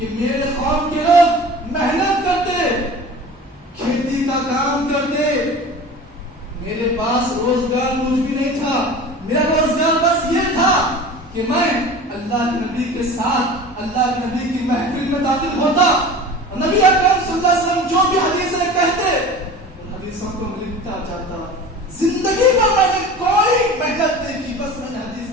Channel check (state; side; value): normal; both; correlation 0.38